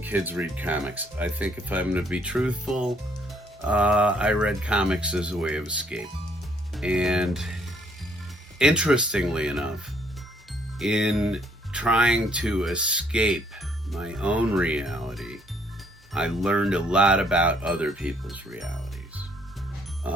kids read comics. I think if I'm going to be truthful, I read comics as a way of escape. And interestingly enough, in trying to escape my own reality, I learned a lot about other people's realities.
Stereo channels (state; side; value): normal; both; correlation 0.67